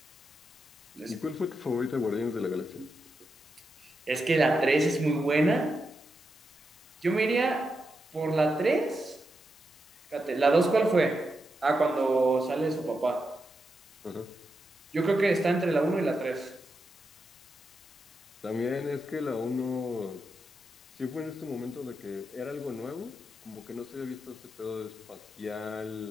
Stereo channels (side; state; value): both; normal; correlation 0.86